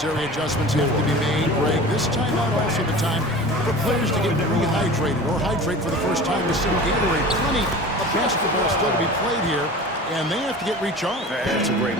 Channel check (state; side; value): normal; both; correlation 0.37